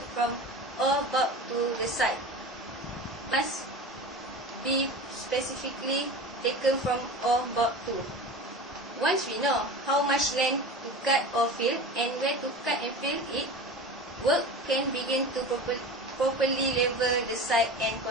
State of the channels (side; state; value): both; normal; correlation 0.32